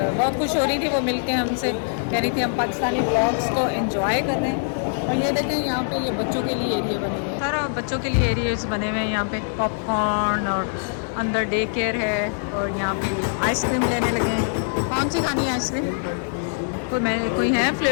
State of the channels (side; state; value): right; silent; digital silence